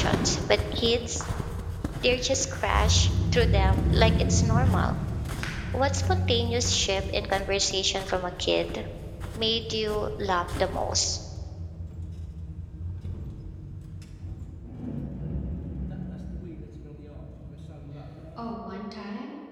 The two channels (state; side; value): identical; both; correlation 1.00